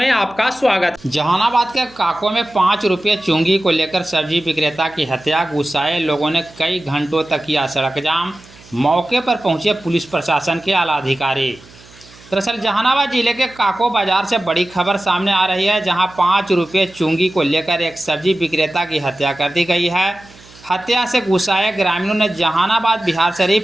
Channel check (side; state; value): right; noise; hum, 24 dB below the sound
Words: आपका स्वागत। जहानाबाद के काको में 5 रुपये चुंगी को लेकर सब्जी विक्रेता की हत्या, गुस्साए लोगों ने कई घंटों तक किया सड़क जाम। मौके पर पहुंचे पुलिस प्रशासन के आला अधिकारी। दरअसल जहानाबाद जिले के काको बाजार से बड़ी खबर सामने आ रही है, जहां 5 रुपये चुंगी को लेकर एक सब्जी विक्रेता की हत्या कर दी गई है। हत्या से गुस्साए ग्रामीणों ने जहानाबाद बिहार शरीफ